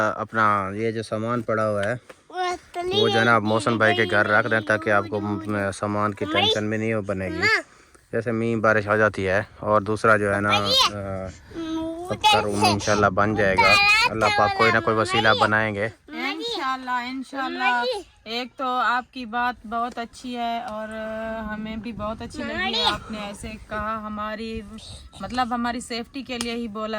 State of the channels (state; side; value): identical; both; correlation 1.00